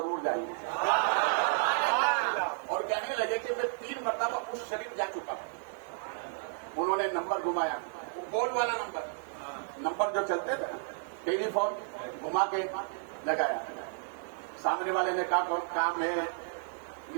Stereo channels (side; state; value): left; silent; digital silence